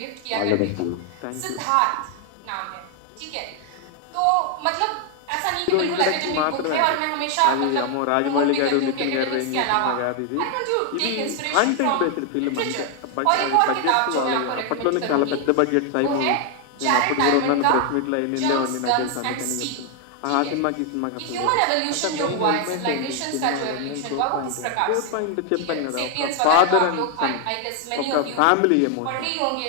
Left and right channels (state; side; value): different; both; correlation 0.00